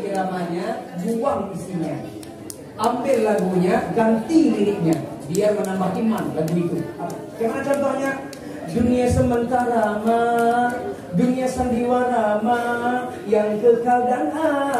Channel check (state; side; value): identical; both; correlation 1.00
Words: iramanya, buang isinya. Ambil lagunya, ganti liriknya, biar menambah iman lagu itu. Gimana contohnya? Dunia sementara dunia sandiwara yang kekal dan